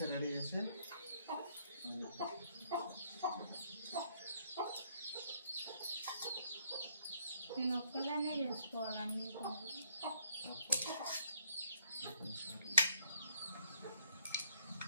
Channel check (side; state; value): both; inverted; correlation -0.68